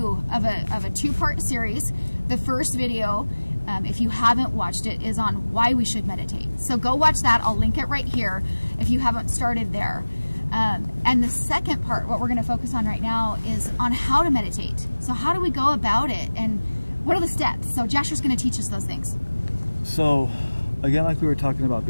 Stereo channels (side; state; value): both; inverted; correlation -1.00